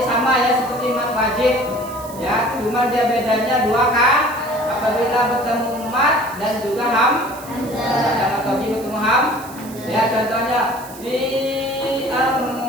sama ya seperti mad wajib. Ya, cuma dia bedanya 2 kata. Apabila bertemu mad dan juga hamzah. Mad tabi'i bertemu ham. Ya, contohnya fi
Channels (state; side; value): noise; right; hiss, 17 dB below the sound